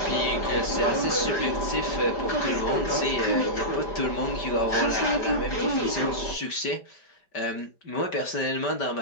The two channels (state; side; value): late; right; 5.1 ms